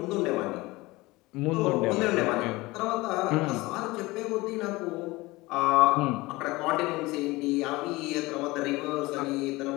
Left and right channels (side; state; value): right; quieter; 21.2 dB